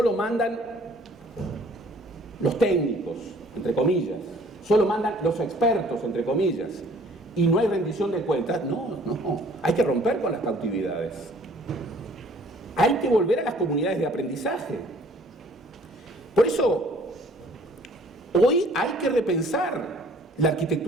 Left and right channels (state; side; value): normal; both; correlation 0.56